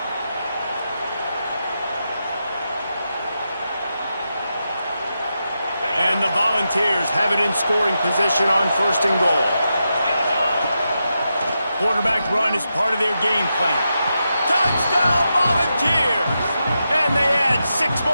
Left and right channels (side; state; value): both; inverted; correlation -0.87